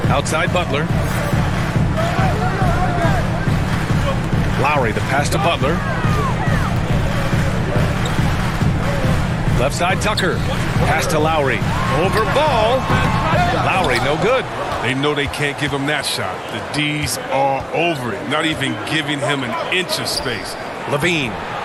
Outside Butler. Lowry, the pass to Butler. Left side, Tucker. Pass to Lowry. Over Ball. Lowry, no good. They know they can't give him that shot. The D's are over it, not even giving him an inch of space. Levine.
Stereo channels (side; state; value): both; identical; correlation 1.00